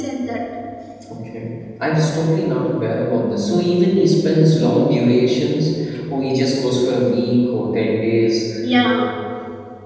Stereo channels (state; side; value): identical; both; correlation 1.00